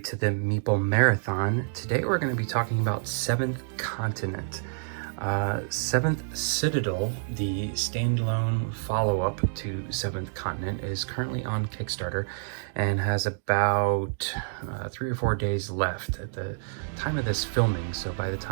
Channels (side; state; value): left; silent; digital silence